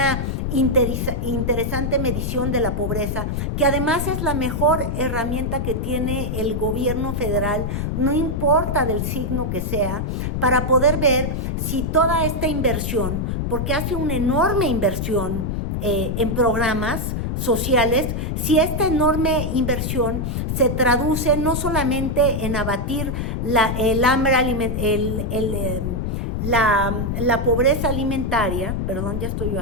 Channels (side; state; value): left; noise; rumble, 1 dB below the sound